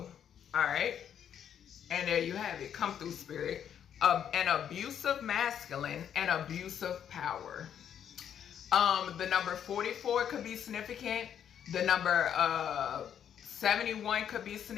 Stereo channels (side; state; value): right; quieter; 9.0 dB